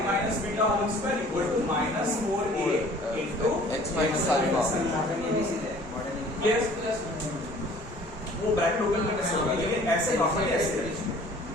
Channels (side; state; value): both; normal; correlation 0.51